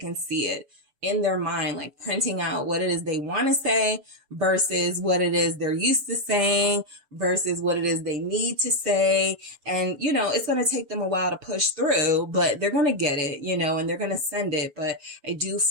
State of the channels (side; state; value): left; late; 7.1 ms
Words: see it. in their mind, like printing out what it is they want to say versus what it is they're used to saying versus what it is they need to say. And, you know, it's going to take them a while to push through, but they're going to get it, you know, and they're going to send it. But I do